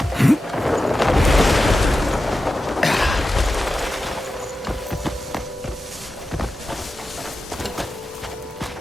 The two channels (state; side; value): normal; both; correlation 0.92